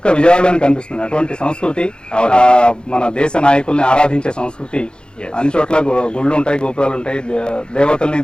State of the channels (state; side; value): late; right; 0.050 ms